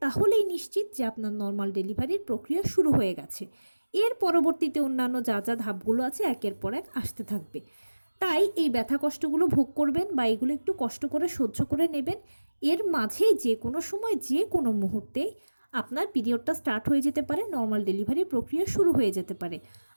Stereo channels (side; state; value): both; inverted; correlation -1.00